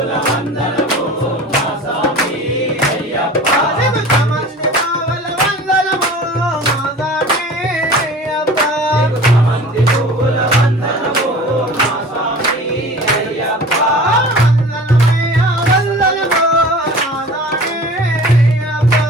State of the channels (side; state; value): both; normal; correlation 0.41